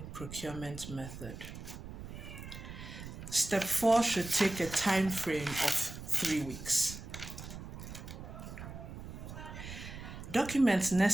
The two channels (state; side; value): noise; right; rumble, 11 dB below the sound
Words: procurement method. Step 4 should take a time frame of 3 weeks. Documents